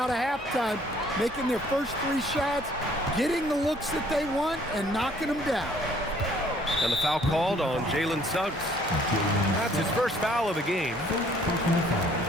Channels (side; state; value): both; normal; correlation 0.60